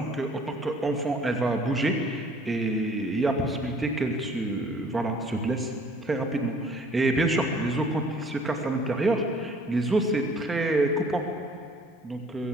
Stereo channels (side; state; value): both; normal; correlation 0.55